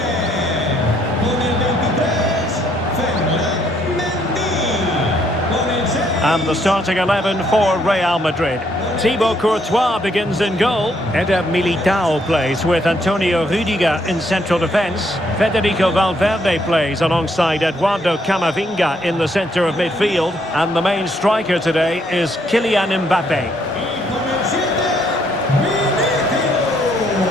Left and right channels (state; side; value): normal; both; correlation 0.71